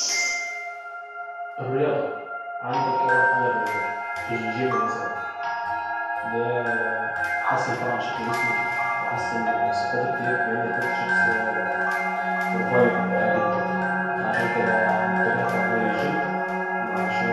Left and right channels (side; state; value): both; identical; correlation 1.00